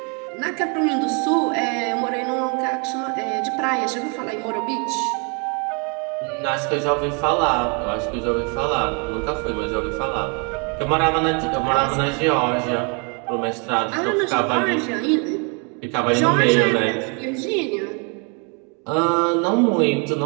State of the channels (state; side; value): quieter; left; 35.4 dB